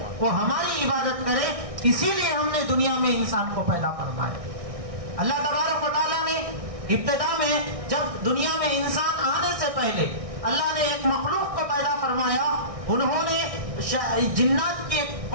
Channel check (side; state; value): left; late; 1.6 ms